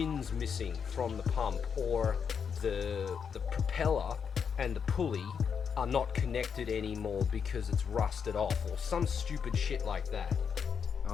missing from the pump, or the propeller and the pulley are not connected anymore because it's rusted off, or some stupid shit like that.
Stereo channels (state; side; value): quieter; right; 6.8 dB